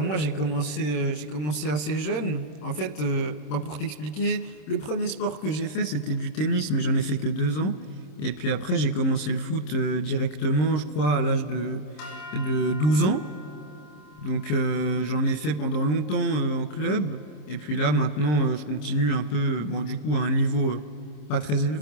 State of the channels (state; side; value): late; right; 27 ms